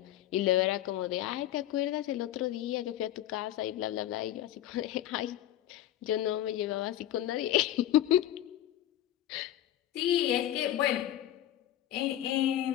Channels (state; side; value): quieter; right; 12.7 dB